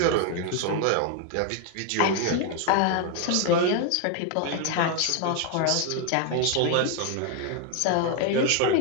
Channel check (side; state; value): both; different; correlation 0.01